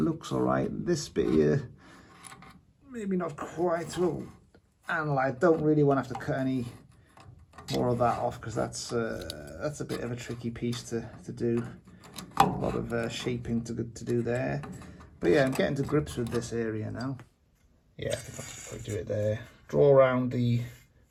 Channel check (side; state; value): both; identical; correlation 1.00